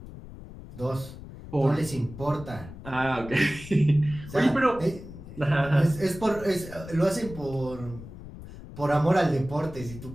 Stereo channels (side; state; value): left; noise; rumble, 14 dB below the sound